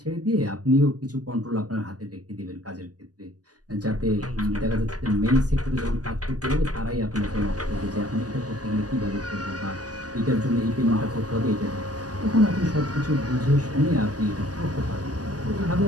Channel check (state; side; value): late; left; 0.68 ms